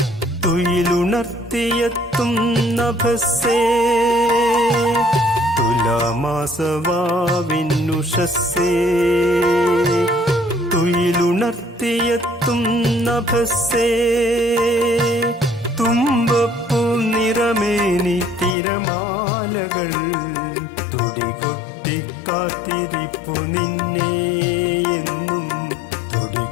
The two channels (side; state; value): right; drops out; at 18.6 s